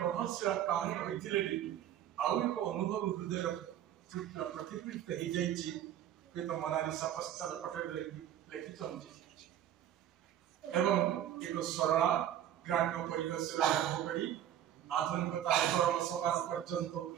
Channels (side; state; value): left; quieter; 11.0 dB